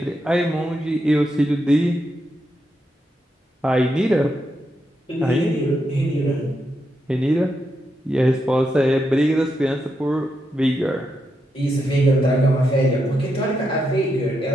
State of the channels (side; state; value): both; normal; correlation 0.83